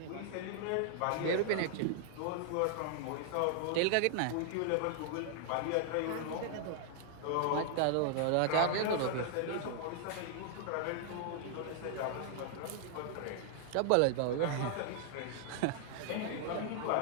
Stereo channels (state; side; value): different; both; correlation 0.00